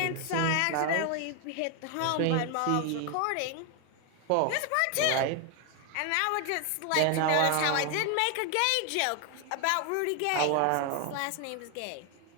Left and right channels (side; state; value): both; different; correlation 0.01